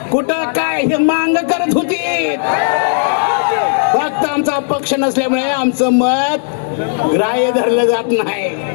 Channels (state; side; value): silent; right; digital silence